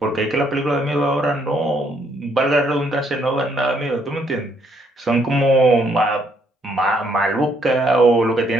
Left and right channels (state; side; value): normal; both; correlation 0.70